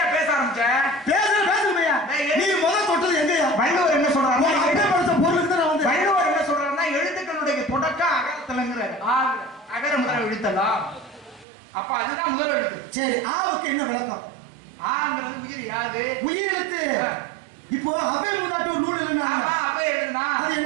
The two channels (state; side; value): drops out; left; at 11.5 s